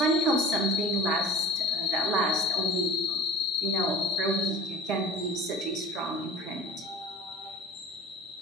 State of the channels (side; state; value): both; normal; correlation 0.38